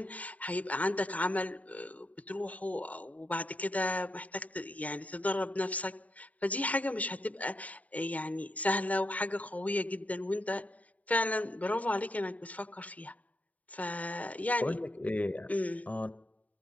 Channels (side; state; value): right; late; 0.070 ms